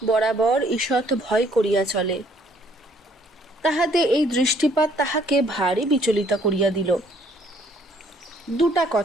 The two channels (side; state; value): both; normal; correlation 0.63